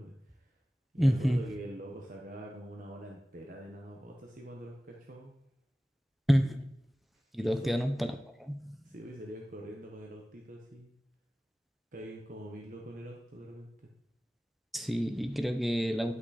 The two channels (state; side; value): normal; both; correlation 0.96